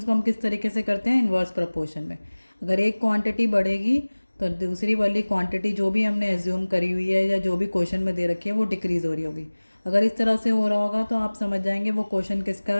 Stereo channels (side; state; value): both; inverted; correlation -1.00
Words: को हम किस तरीके से करते हैं? इन्वर्स प्रोपोर्शन में। अगर एक क्वांटिटी बढ़ेगी तो दूसरी वाली क्वांटिटी जो भी हमने एज्यूम करी हुई है या जो भी क्वेश्चन में दे रखी है वो डिक्रीज़ हो रही होगी। अगर इस तरह से हो रहा होगा तो आप समझ जाएंगे वो क्वेश्चन किसका